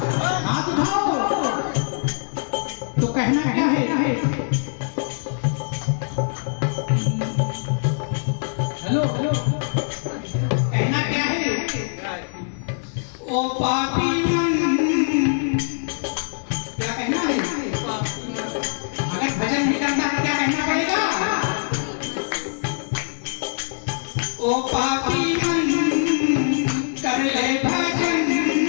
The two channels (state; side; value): silent; right; digital silence